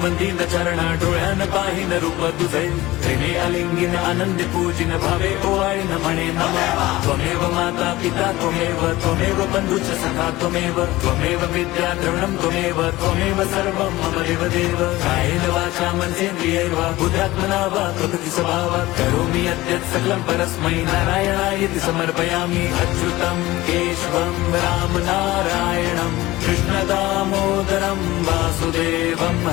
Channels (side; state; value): right; quieter; 18.2 dB